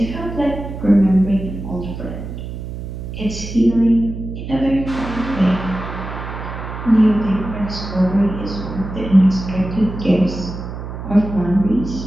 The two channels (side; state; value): right; noise; hum, 8 dB below the sound